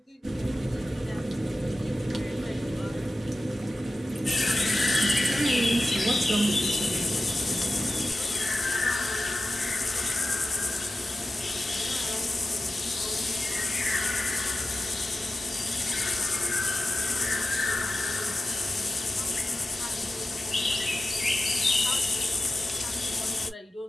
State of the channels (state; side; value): normal; both; correlation 0.94